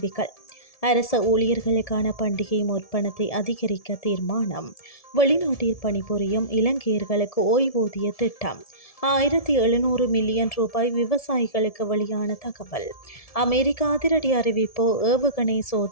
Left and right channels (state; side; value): late; right; 1.7 ms